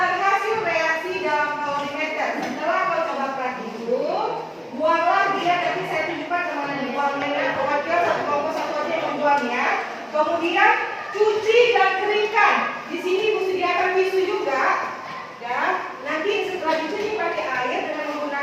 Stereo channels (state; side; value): identical; both; correlation 1.00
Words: hasil reaksi dalam kalorimeter. Setelah kau coba praktik dulu, buanglah dia. Nanti saya tunjukkan kemana dibuangnya. Pokoknya satu kelompok satu aja yang membuangnya. Kemudian cuci dan keringkan. Di sini Ibu sediakan tisu juga. Ya, nanti setelah dicuci pakai air dengan